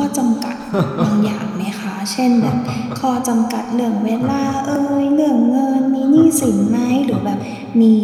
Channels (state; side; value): identical; both; correlation 1.00